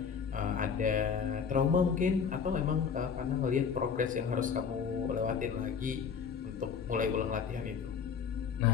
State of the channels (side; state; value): right; quieter; 6.5 dB